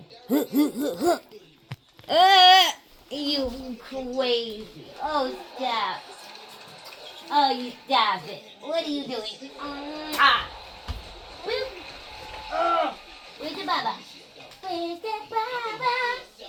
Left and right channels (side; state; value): both; identical; correlation 1.00